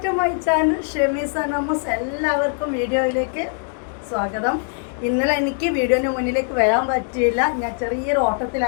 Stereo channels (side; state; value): right; silent; 56 dB below the other